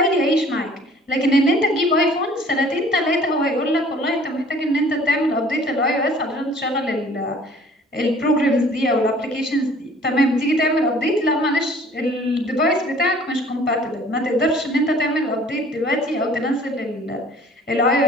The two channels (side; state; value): both; normal; correlation 0.52